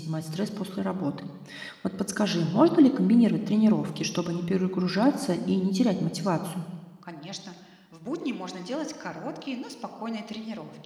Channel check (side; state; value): both; identical; correlation 1.00